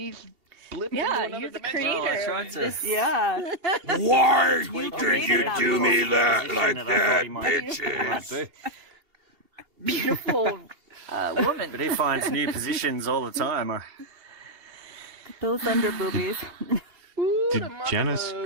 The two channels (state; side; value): late; left; 2.7 ms